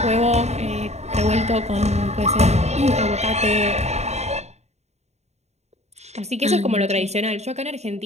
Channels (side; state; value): left; late; 0.32 ms